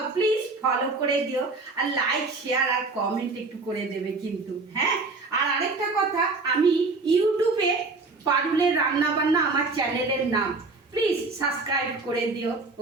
প্লিজ ফলো করে দিও, আর লাইক শেয়ার আর কমেন্ট একটু করে দেবে কিন্তু, হ্যাঁ। আর আরেকটা কথা, আমি ইউটিউবে পারুলের রান্না বান্না আমার চ্যানেলের নাম, প্লিজ সাবস্ক্রাইব করে দিও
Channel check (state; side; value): quieter; left; 3.7 dB